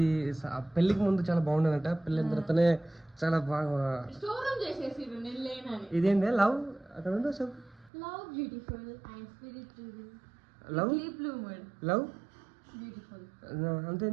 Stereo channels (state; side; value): drops out; left; at 7.9 s